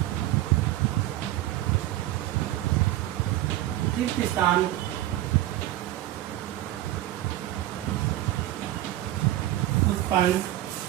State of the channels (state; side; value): quieter; left; 14.8 dB